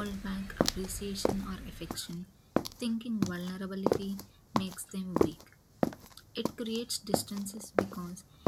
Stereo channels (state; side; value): identical; both; correlation 1.00